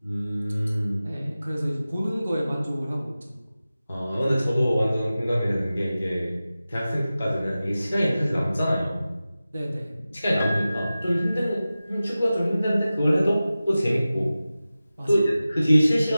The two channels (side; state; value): both; inverted; correlation -0.95